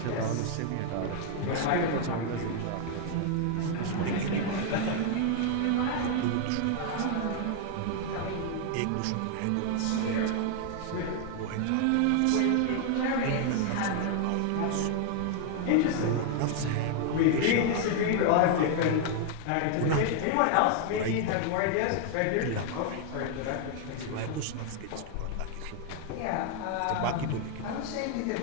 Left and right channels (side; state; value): both; different; correlation 0.00